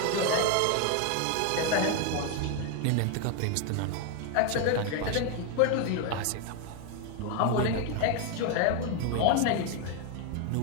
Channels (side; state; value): both; different; correlation 0.01